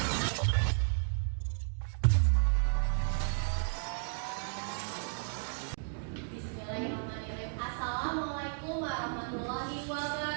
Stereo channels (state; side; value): silent; left; 55 dB below the other